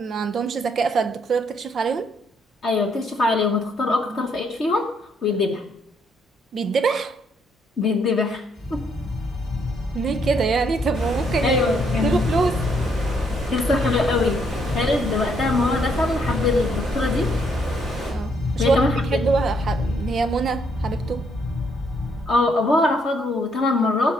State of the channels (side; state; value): both; normal; correlation 0.71